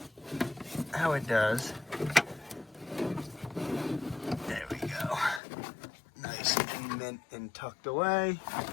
how it does. There we go. Nice and mint and tucked away.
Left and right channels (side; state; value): right; drops out; at 5.4 s